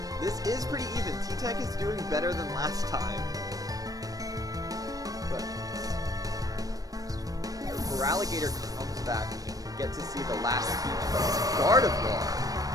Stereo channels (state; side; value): late; left; 0.18 ms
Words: This is pretty even. T-Tech is doing better than last time. But... Feraligator comes back, meaning we get to see the last team member. It's Gardevoir.